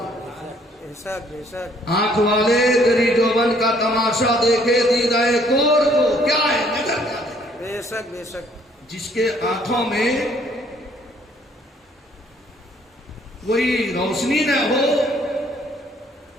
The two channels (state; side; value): normal; both; correlation 0.63